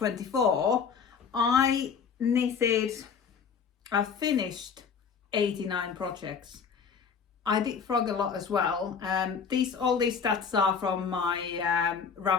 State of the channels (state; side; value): quieter; right; 6.3 dB